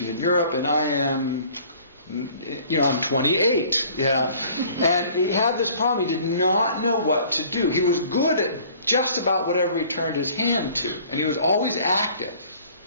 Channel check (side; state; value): both; inverted; correlation -0.53